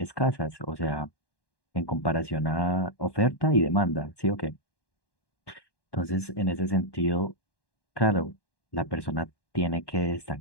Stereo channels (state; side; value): late; right; 1.1 ms